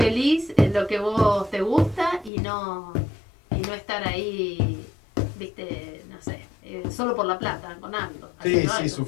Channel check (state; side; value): drops out; right; at 2.3 s